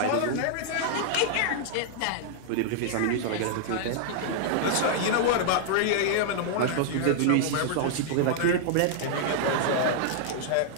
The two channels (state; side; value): different; both; correlation -0.01